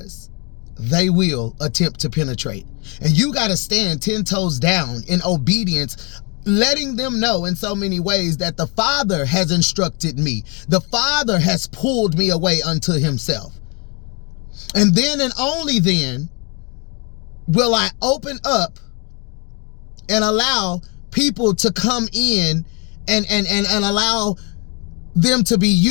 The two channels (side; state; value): right; quieter; 32.4 dB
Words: they will attempt to penetrate. And you got to stand 10 toes down in obedience, letting them know in so many ways that the Father has instructed me. The Father has pulled me away unto himself. And then and only then will I open up and allow people to come in and allow them to be